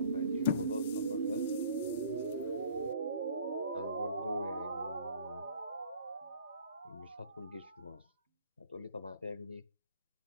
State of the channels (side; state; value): both; inverted; correlation -0.52